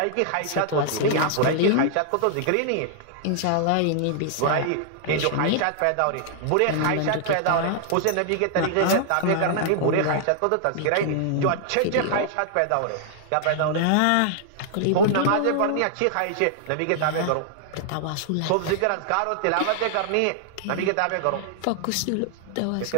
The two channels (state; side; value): different; both; correlation -0.01